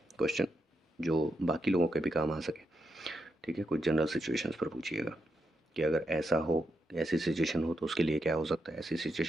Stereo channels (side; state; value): both; normal; correlation 0.83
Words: क्वेश्चन, जो बाकी लोगों के भी काम आ सके। ठीक है, कुछ जनरल सिचुएशंस पर पूछिएगा कि अगर ऐसा हो, ऐसी सिचुएशन हो तो उसके लिए क्या हो सकता है, ऐसी